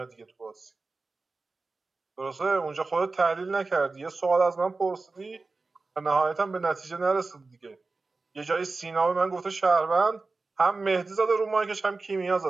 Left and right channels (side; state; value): left; quieter; 3.7 dB